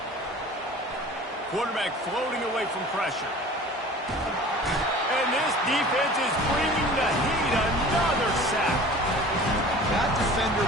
Quarterback floating away from pressure. And this defense is bringing the heat. Another sack. That defender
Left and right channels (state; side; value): normal; both; correlation 0.43